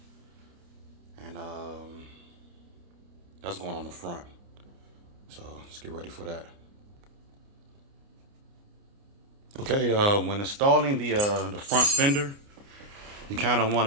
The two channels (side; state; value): left; late; 29 ms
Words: and that's going on the front. So let's get ready for that. Okay, when installing the front fender, you kind of want